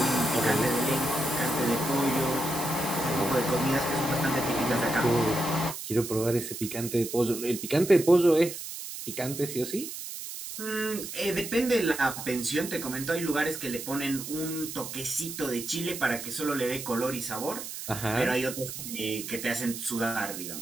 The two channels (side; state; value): right; noise; hiss, 8 dB below the sound